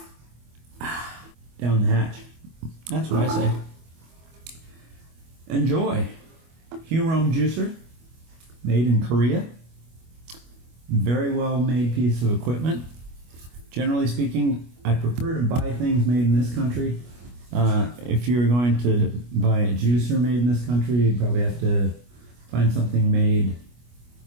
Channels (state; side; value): late; left; 25 ms